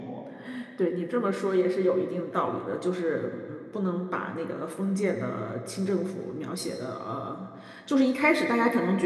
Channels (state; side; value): identical; both; correlation 1.00